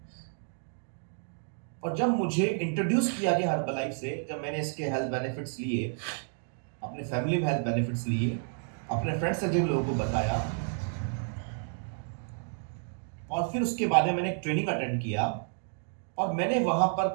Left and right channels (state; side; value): silent; left; 57 dB below the other